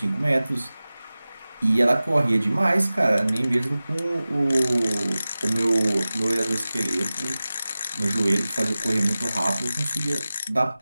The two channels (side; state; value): both; inverted; correlation -0.97